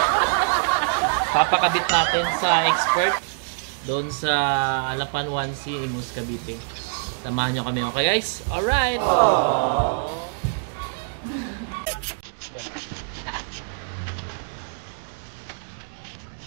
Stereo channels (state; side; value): silent; left; digital silence